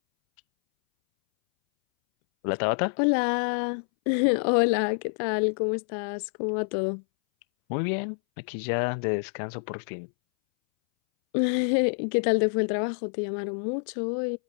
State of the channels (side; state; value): right; silent; 60 dB below the other